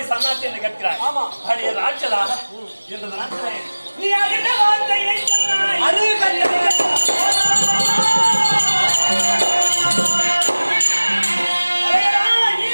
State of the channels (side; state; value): both; inverted; correlation -1.00